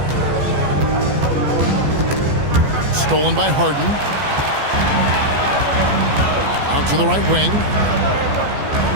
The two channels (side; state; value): left; late; 14 ms